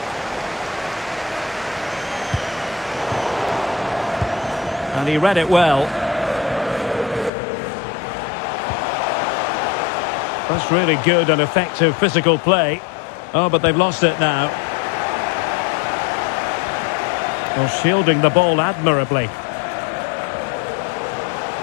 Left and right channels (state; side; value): drops out; right; at 7.3 s